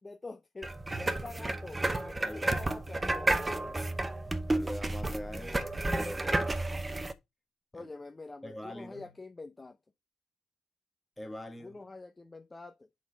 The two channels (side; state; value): both; normal; correlation 0.96